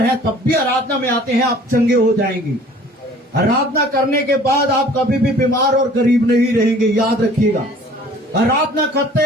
हैं तब भी आराधना में आते हैं, आप चंगे हो जाएंगे। आराधना करने के बाद आप कभी भी बीमार और गरीब नहीं रहेंगे, याद रखिएगा। आराधना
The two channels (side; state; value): both; normal; correlation 0.50